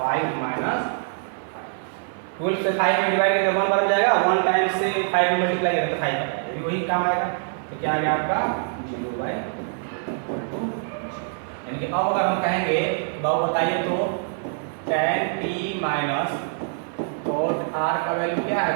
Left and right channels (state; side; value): silent; left; digital silence